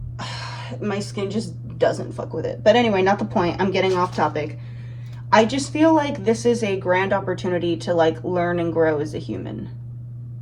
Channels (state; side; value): identical; both; correlation 1.00